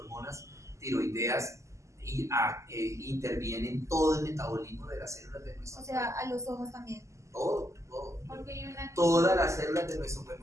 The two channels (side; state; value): left; late; 0.14 ms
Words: tiroideas interviene en todo el metabolismo de las células de nuestro O sea, a los ojos también. cuerpo? Todo. Porque hay una... Todas las células de nuestro